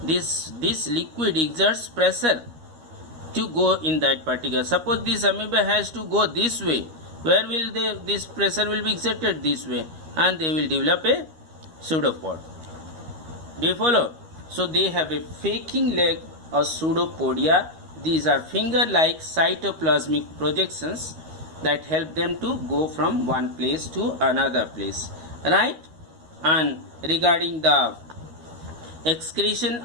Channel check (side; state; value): left; late; 13 ms